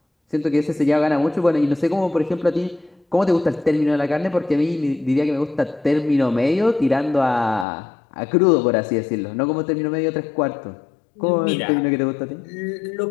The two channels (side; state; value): right; drops out; at 7.7 s